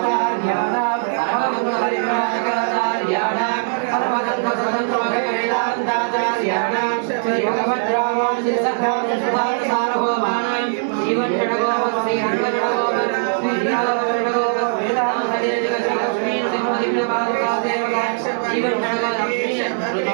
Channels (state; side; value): silent; left; digital silence